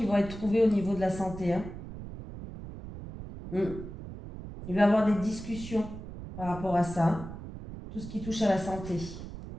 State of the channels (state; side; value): noise; right; rumble, 11 dB below the sound